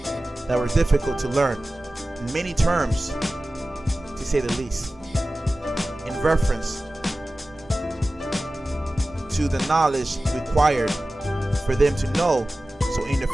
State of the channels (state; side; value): normal; both; correlation 0.96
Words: that were difficult to learn. Many terms, to say the least, in reference to the knowledge required for them to know, so in the